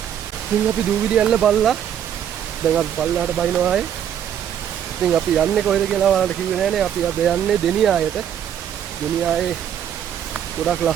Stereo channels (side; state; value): left; quieter; 9.5 dB